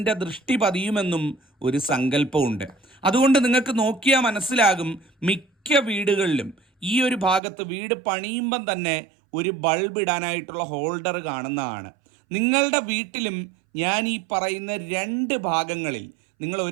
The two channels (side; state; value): left; drops out; at 7.4 s